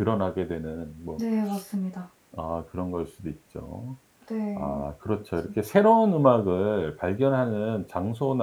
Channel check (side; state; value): both; identical; correlation 1.00